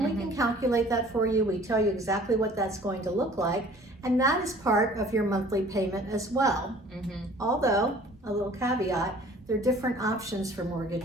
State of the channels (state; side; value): normal; both; correlation 0.51